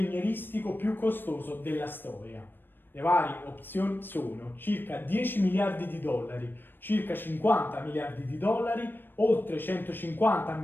più costoso della storia? Le varie opzioni sono circa 10 miliardi di dollari, circa 50 miliardi di dollari, oltre 150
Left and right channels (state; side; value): late; right; 0.095 ms